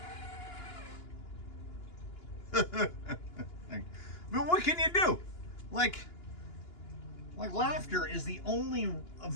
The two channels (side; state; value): right; late; 2.9 ms